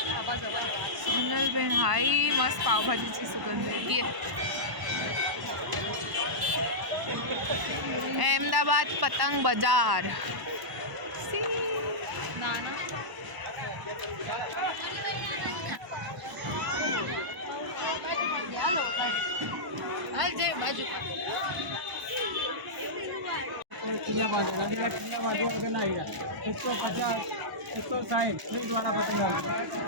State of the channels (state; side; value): late; left; 1.0 ms